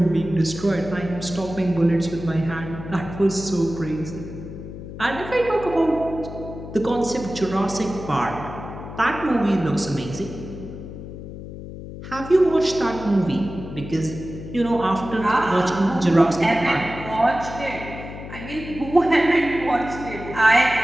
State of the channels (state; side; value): noise; left; hum, 11 dB below the sound